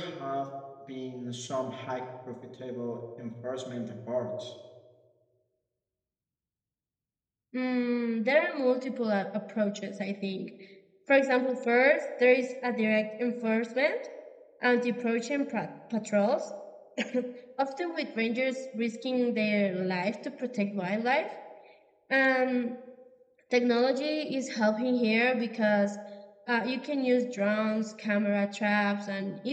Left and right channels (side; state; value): both; identical; correlation 1.00